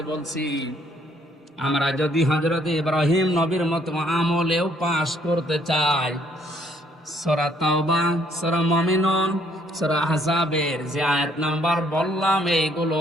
বলছি, আমরা যদি হযরত ইব্রাহিম নবীর মতো আমলেও পাস করতে চাই, সূরা তাওবা, সূরা মুমিনুন, সূরা আহজাবের যে আয়াত নাম্বার বললাম, এইগুলো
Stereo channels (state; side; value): normal; both; correlation 0.66